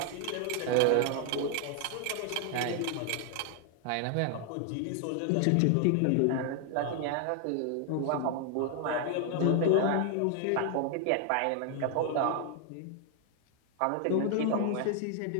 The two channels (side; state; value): both; different; correlation 0.00